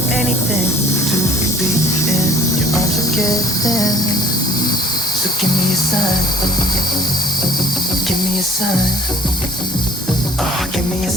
anything to be in your arms again. So give me a sign. Give me a sign. Oh, give me a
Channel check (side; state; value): both; normal; correlation 0.52